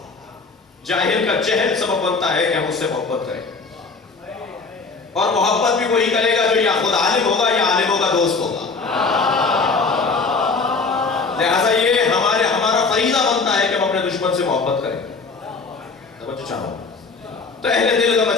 جاہل کا جہل سبب بنتا ہے کہ ہم اس سے محبت کریں، اور محبت بھی وہی کرے گا جو یا خود عالم ہوگا یا عالموں کا دوست ہوگا۔ لہذا یہ ہمارا فریضہ بنتا ہے کہ ہم اپنے دشمن سے محبت کریں۔ توجہ چاہوں، تو اہل دل کا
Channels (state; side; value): quieter; right; 4.3 dB